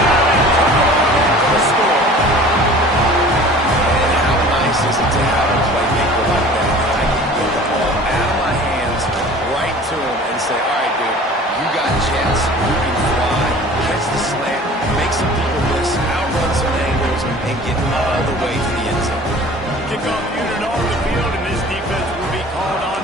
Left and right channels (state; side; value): normal; both; correlation 0.45